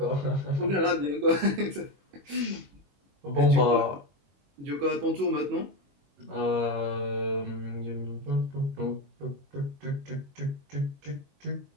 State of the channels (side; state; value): left; late; 21 ms